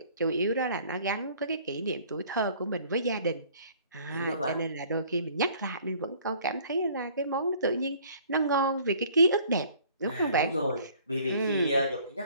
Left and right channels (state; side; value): inverted; both; correlation -0.55